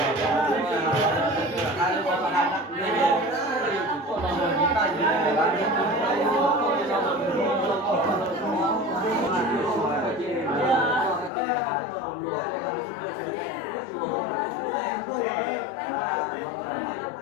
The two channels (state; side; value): drops out; right; at 11.3 s